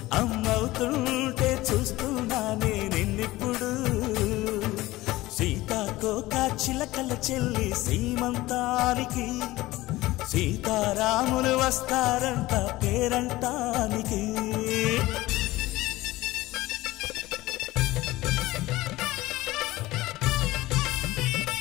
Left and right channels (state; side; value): quieter; right; 18.2 dB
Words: అమ్మవుతుంటే చూస్తున్నా నేను నిన్నిప్పుడు సీతాకోక చిలకల చెల్లి సీమంతానికి సీతారాములు వస్తారంట పేరంటానికి